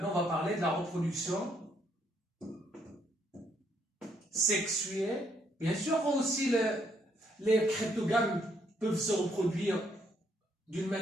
on va parler de la reproduction sexuée. Bien sûr, aussi les cryptogames peuvent se reproduire d'une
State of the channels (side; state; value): both; normal; correlation 0.71